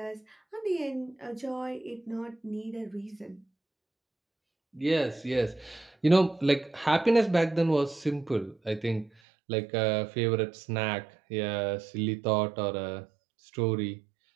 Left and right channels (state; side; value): drops out; left; at 9.1 s